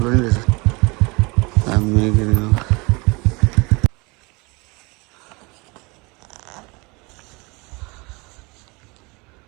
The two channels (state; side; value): quieter; left; 26.7 dB